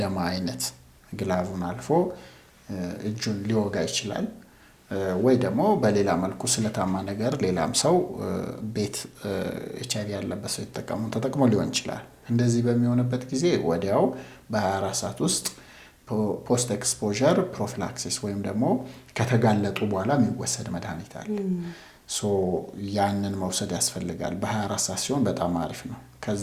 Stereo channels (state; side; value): identical; both; correlation 1.00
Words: አይነት ግላቡን አልፎ እጁን ሊወጋ ይችላል። ወይ ደግሞ በሌላ መልኩ ስለታማ ነገር ሌላም ሰው ቤት HIV ያለበት ሰው ተጠቅሞ ሊሆን ይችላል። እንደዚህ በሚሆንበት ጊዜ ወዲያው በ24 ሰዓት ውስጥ ፖስት ኤክስፖዠር ፕሮፊላክሲስ ወይም ደግሞ ከተጋለጡ በኋላ የሚወሰድ መድኃኒት አለ። ሶ ያንን መውሰድ ያስፈልጋል። በ24 ሰዓት ሲሆን በጣም አሪፍ ነው። ከዛ